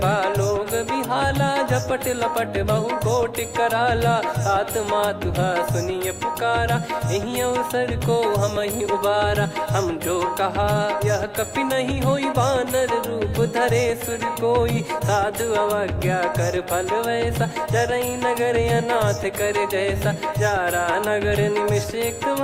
बिहाला, झपट लपट बहु कोट कराला, सात मातुहा सुनिय पुकारा, यही अवसर को हम ही उबारा, हम जो कहा यह कपि नहीं होई, वानर रूप धरे सुर कोई, साधु अवज्ञा कर फल वैसा, जरई नगर अनाथ कर जैसा, जारा नगर निमिष एक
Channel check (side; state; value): both; identical; correlation 1.00